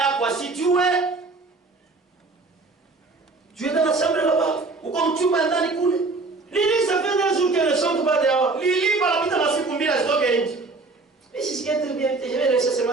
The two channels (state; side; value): quieter; left; 3.6 dB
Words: asijue, Tu es dans la chambre là-bas. uko mchumba ndani kule. Lili, ça fait 2 jours qu'elle ne chante pas dehors. Lili panapita masiku mbili asitoke nje. Mais si c'est très bien, je vais laisser seulement